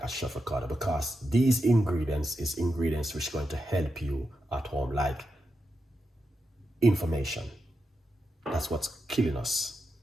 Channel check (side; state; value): both; normal; correlation 0.87